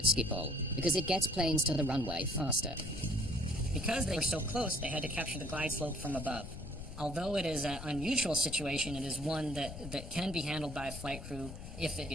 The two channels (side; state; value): left; noise; rumble, 10 dB below the sound